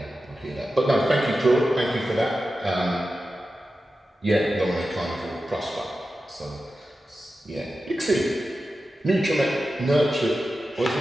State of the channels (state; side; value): normal; both; correlation 0.92